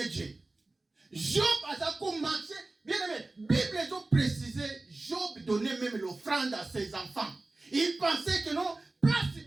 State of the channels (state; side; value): quieter; left; 3.1 dB